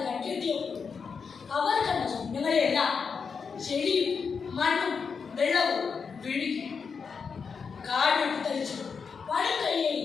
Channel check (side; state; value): right; quieter; 5.7 dB